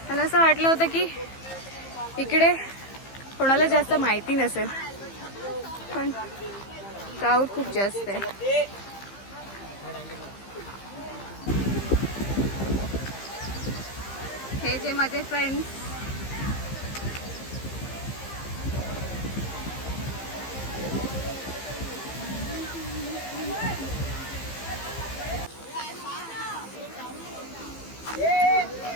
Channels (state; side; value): late; right; 15 ms